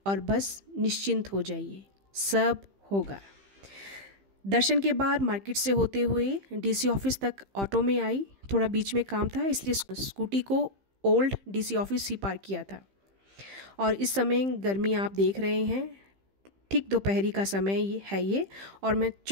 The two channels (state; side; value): late; left; 15 ms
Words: और बस निश्चिंत हो जाइए, सब होगा। दर्शन के बाद मार्केट से होते हुए डीसी ऑफिस तक ऑटो में आई, थोड़ा बीच में काम था इसलिए स्कूटी को ओल्ड डीसी ऑफिस ही पार्क किया था। और इस समय गर्मी आप देख रहे हैं, ठीक दोपहरी का समय ये और मैं